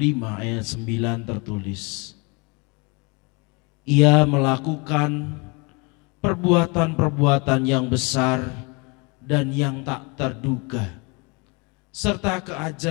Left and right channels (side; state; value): right; quieter; 30.3 dB